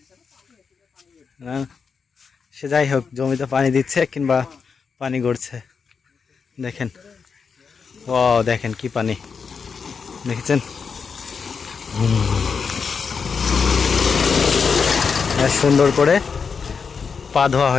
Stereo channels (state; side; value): quieter; right; 5.7 dB